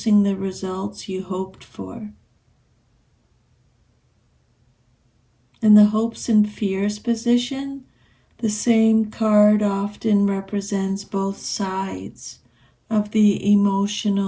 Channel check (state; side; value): identical; both; correlation 1.00